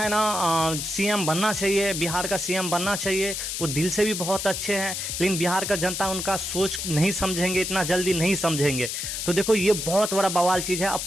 ना सीएम बनना चाहिए, बिहार का सीएम बनना चाहिए। वो दिल से भी बहुत अच्छे हैं, लेकिन बिहार का जनता उनका सोच नहीं समझेंगे, इतना जल्दी नहीं समझेंगे। तो देखो ये बहुत बड़ा बवाल चीज़ है।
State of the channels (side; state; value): left; noise; hiss, 4 dB below the sound